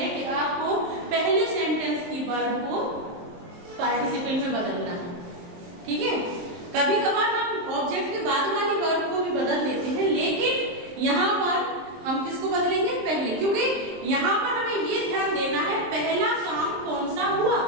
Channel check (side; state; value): left; late; 23 ms